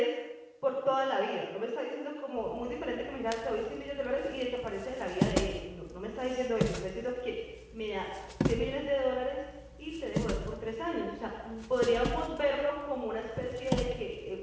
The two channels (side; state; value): both; identical; correlation 1.00